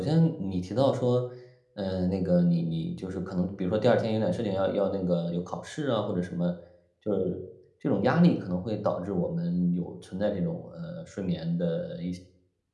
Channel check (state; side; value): identical; both; correlation 1.00